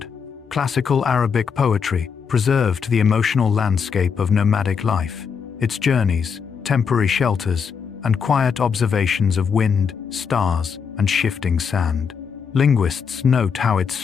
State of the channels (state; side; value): quieter; right; 6.3 dB